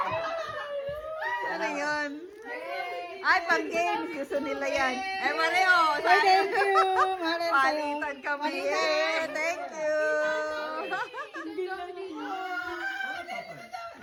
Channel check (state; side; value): identical; both; correlation 1.00